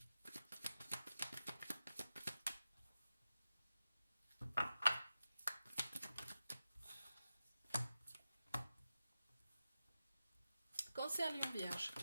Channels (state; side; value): inverted; both; correlation -0.92